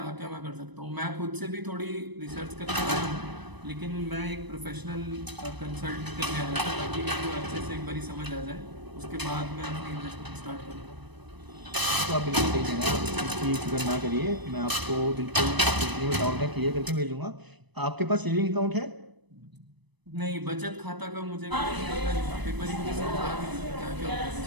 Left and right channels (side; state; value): left; late; 1.0 ms